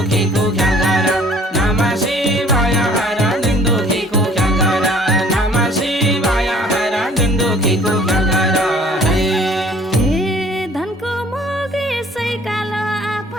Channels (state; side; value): normal; both; correlation 0.55